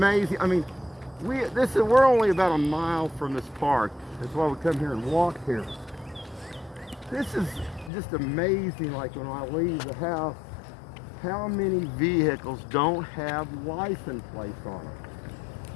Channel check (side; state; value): right; drops out; at 7.9 s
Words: I mean, we're only about a mile from this park. That's why we come here and walk here. This is just amazing. Like when I leave the house, how many vehicles don't have license plates on them?